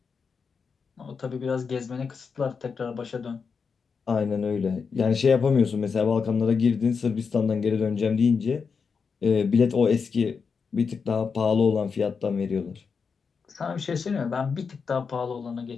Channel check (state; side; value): quieter; right; 5.6 dB